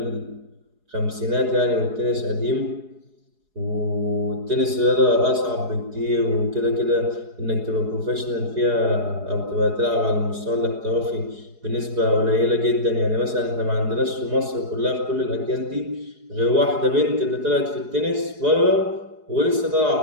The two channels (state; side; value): late; left; 4.8 ms